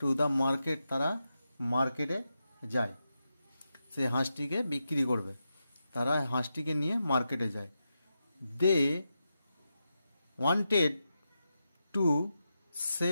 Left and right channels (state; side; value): inverted; both; correlation -0.88